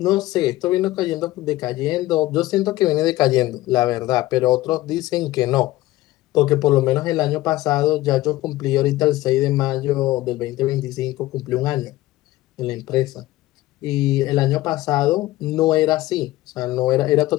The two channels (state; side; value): quieter; right; 17.0 dB